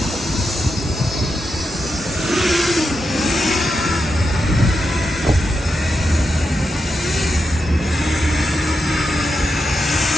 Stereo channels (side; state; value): both; normal; correlation 0.86